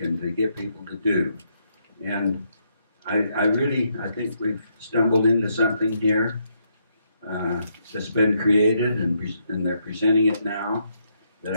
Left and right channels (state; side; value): inverted; both; correlation -0.76